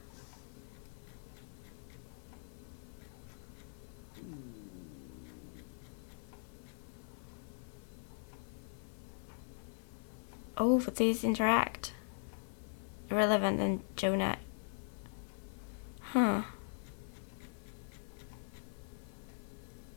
Oh, but these interact. Irrelevant and Jonah. Huh.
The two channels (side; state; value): right; silent; 50 dB below the other